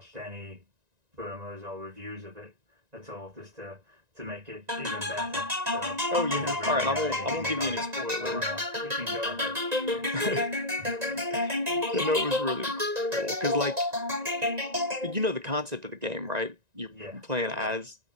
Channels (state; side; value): late; left; 1.9 ms